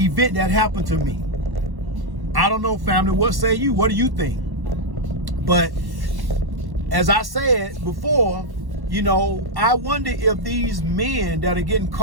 that happened to me. I don't know, family. What say you? What do you think? But as I said before, you know, I wonder if these men that are getting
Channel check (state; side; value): late; left; 1.1 ms